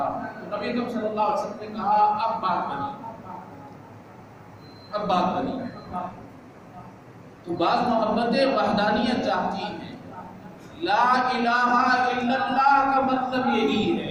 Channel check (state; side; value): identical; both; correlation 1.00